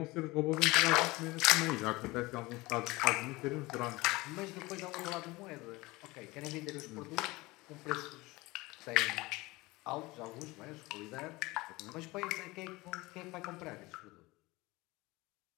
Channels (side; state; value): right; quieter; 21.7 dB